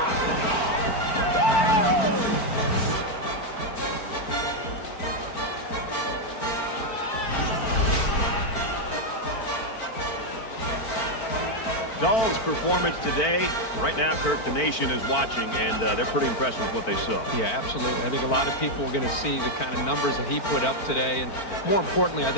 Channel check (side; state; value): right; late; 4.4 ms